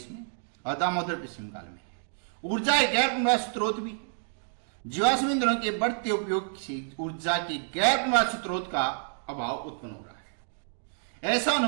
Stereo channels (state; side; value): silent; left; digital silence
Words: में और दामोदर पश्चिम बंगाल में है। ऊर्जा एक गैर पुनर्वास स्रोत भी। जीवाश्म ईंधनों के बढ़ते उपयोग से ऊर्जा के गैर पुनर्वास स्रोत का अभाव उत्पन्न हो रहा है। ऐसा